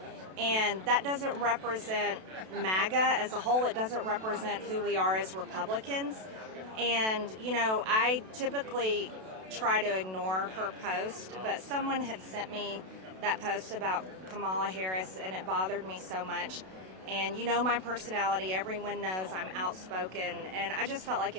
And that doesn't represent MAGA as a whole. It doesn't represent who we are as Republicans. And, you know, I typically try to ignore her post, but someone had sent me that post about Kamala Harris, and it bothered me so much. And you know my personality, everyone knows I'm outspoken, and I just felt like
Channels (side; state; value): left; late; 32 ms